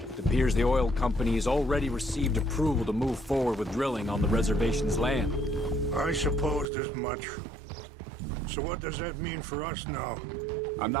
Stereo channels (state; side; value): drops out; left; at 6.7 s